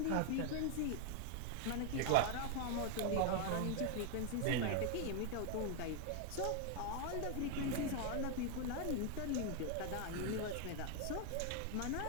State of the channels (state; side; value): different; both; correlation 0.00